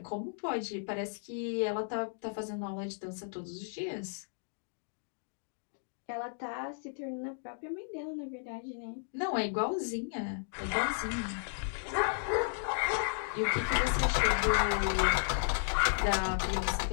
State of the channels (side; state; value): right; silent; digital silence